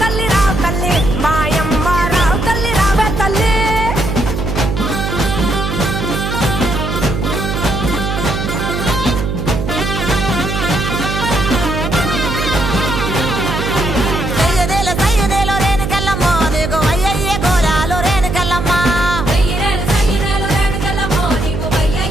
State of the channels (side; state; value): right; noise; hum, 3 dB below the sound